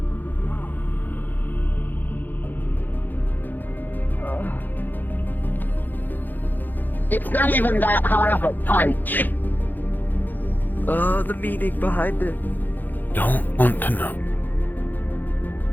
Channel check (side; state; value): right; late; 0.087 ms